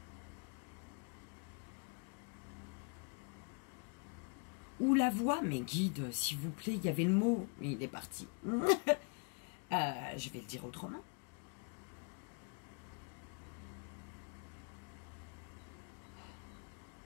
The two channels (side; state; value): right; quieter; 35.5 dB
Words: Ou la voix, mais guide, s'il vous plaît, il y avait le mot, il est parti. Je vais le dire autrement.